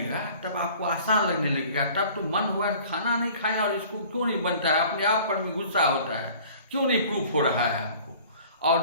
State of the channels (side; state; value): both; inverted; correlation -0.48